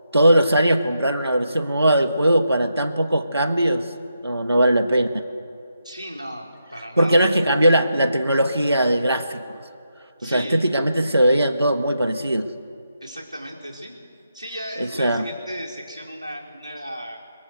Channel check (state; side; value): inverted; both; correlation -0.83